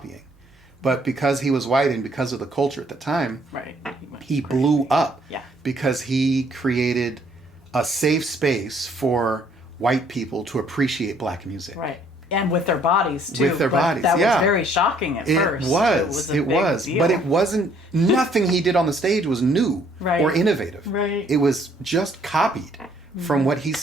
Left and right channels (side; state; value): both; normal; correlation 0.63